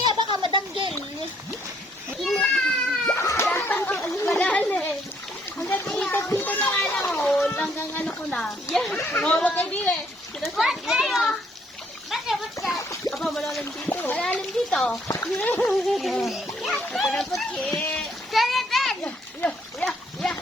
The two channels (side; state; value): both; normal; correlation 0.68